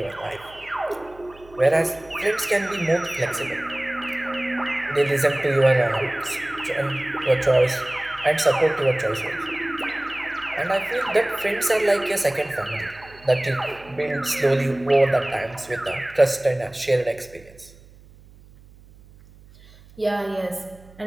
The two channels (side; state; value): right; noise; hum, 24 dB below the sound